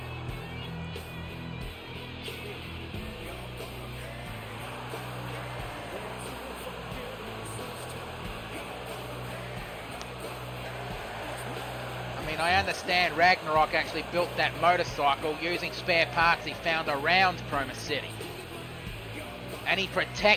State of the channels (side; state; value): both; identical; correlation 1.00